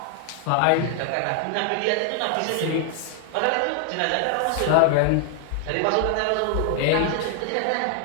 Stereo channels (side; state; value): both; different; correlation 0.00